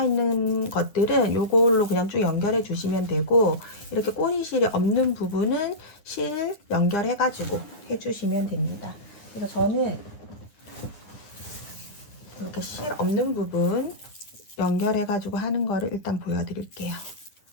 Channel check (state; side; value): late; right; 9.6 ms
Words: 것들은 요걸로 그냥 쭉 연결해 주시면 되고, 이렇게 꼬리실이 없는 부분은 실 연결해가지고 해주시면 됩니다. 그래서 저는 이렇게 실 없는 부분 연결해가지고 하는 거를 일단 보여드릴게요.